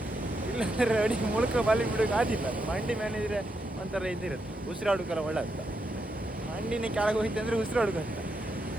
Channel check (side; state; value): both; normal; correlation 0.82